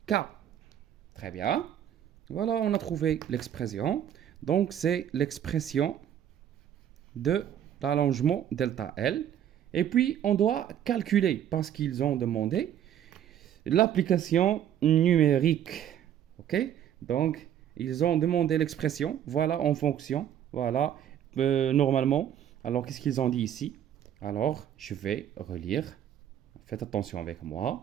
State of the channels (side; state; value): left; quieter; 10.2 dB